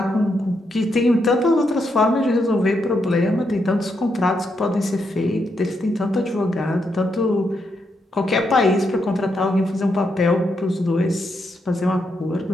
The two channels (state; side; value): normal; both; correlation 0.80